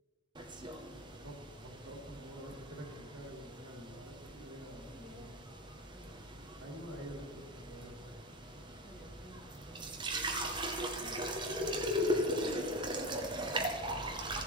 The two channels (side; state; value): both; normal; correlation 0.22